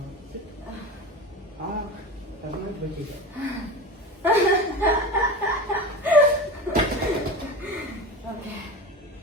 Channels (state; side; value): normal; both; correlation 0.29